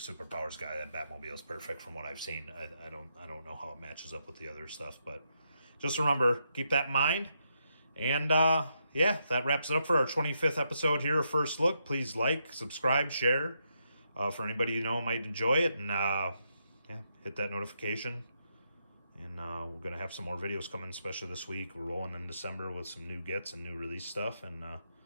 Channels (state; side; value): inverted; both; correlation -0.80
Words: guy, that Batmobile is perfect from what I've seen. I don't know how it matches up with the other stuff, but just remember, keep that in mind. And yeah, that wraps it up for our 25th episode here, First Look. Please like, subscribe, share. For anybody you know might enjoy it, and yeah, hit that notification. And we're gonna have some more videos coming, especially this week. We're rolling in December with some new gets and new release stuff, and